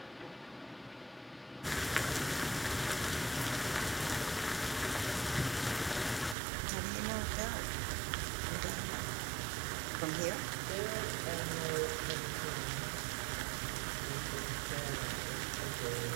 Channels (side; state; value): left; drops out; at 6.4 s